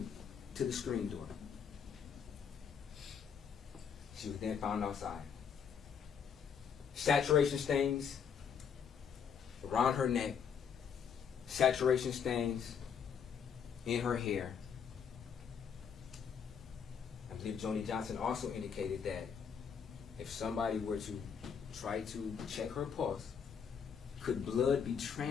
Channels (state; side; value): quieter; right; 7.1 dB